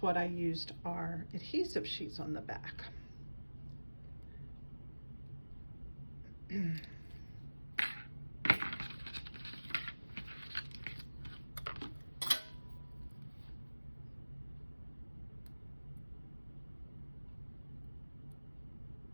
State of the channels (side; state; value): both; inverted; correlation -1.00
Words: what I used our adhesive sheets on the back. Okay,